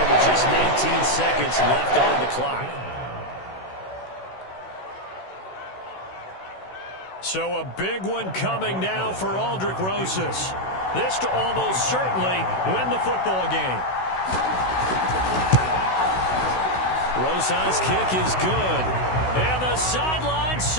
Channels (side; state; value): right; late; 16 ms